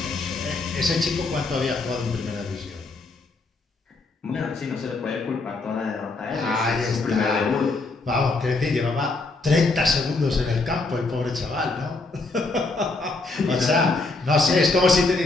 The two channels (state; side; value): quieter; right; 3.5 dB